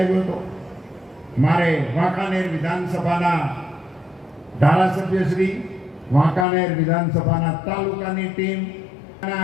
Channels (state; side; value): drops out; right; at 6.5 s